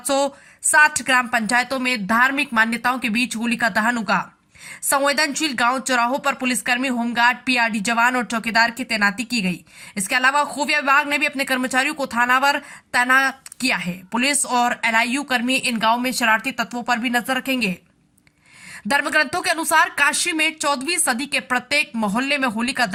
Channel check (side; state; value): both; identical; correlation 1.00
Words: ग्राम पंचायतों में धार्मिक मान्यताओं के बीच होली का दहन होगा। संवेदनशील गांव चौराहों पर पुलिसकर्मी, होमगार्ड, PRD जवान और चौकीदार की तैनाती की गई। इसके अलावा खुफिया विभाग ने भी अपने कर्मचारियों को थानावर तैनात किया है। पुलिस और LIU कर्मी इन गांवों में शरारती तत्वों पर भी नजर रखेंगे। धर्मग्रंथों के अनुसार काशी में 14वीं सदी के प्रत्येक मोहल्ले में होलिका